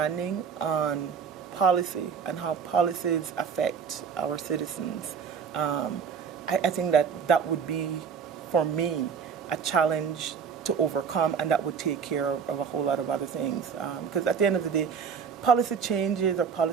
on policy and how policies affect our citizens, I think that would be, for me, a challenge to overcome, and that would take care of a whole lot of other things. Because at the end of the day, policy changes or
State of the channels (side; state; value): left; quieter; 6.5 dB